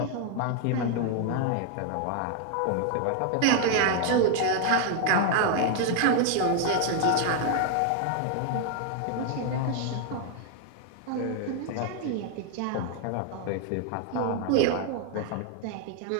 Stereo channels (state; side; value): different; both; correlation 0.00